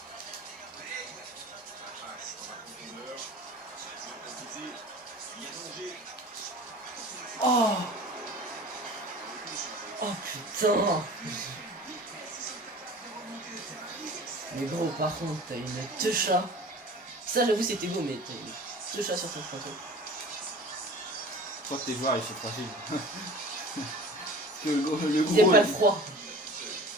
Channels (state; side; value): normal; both; correlation 0.41